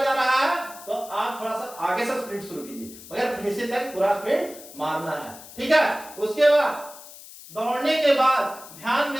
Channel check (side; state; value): left; noise; hiss, 17 dB below the sound